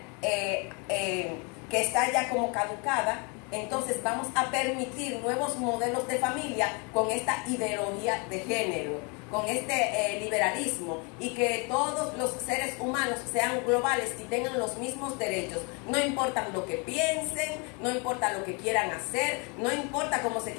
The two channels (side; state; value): right; quieter; 32.5 dB